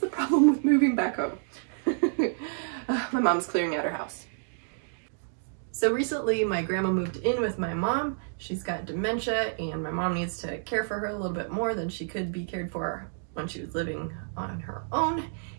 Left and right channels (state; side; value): silent; left; digital silence